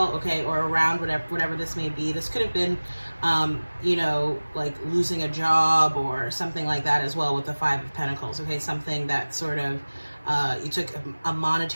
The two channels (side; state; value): both; inverted; correlation -1.00